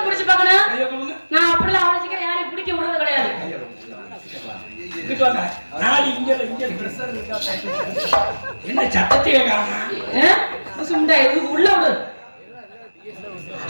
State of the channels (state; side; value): inverted; both; correlation -1.00